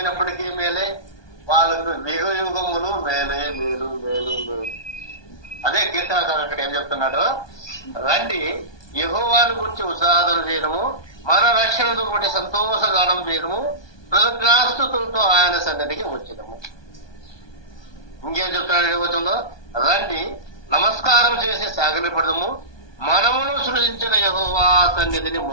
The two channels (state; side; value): late; right; 1.2 ms